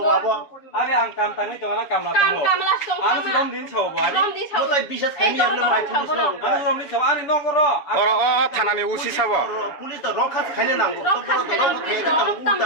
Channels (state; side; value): late; right; 7.0 ms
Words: ngabo Ari ang kam tangi to na kam na to. কাম লাস তো Ano si Rom din sa ba? রম দি ছাও mo tai bisas khani amna mai pulis Ano Rom din sa ani no goro. Oro thanani usi sabo. pulis to rokha khani nango to boro to rokha khani nango uta